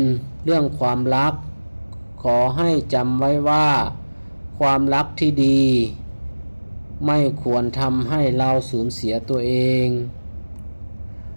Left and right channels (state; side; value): inverted; both; correlation -1.00